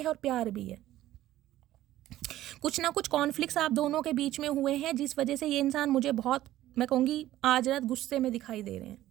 और प्यार भी है। कुछ ना कुछ कॉन्फ्लिक्ट्स आप दोनों के बीच में हुए हैं, जिस वजह से ये इंसान मुझे बहुत, मैं कहूँगी, आज रात गुस्से में दिखाई दे रहे हैं।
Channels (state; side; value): quieter; left; 14.3 dB